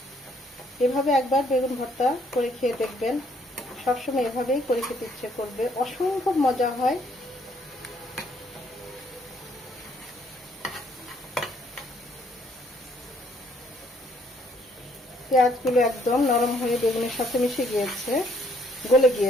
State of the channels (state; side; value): normal; both; correlation 0.66